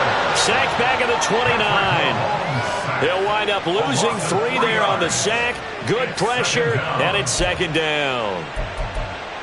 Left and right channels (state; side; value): identical; both; correlation 1.00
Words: Sacked back at the 29. He'll wind up losing 3 there on the sack. Good pressure, and it's 2nd down.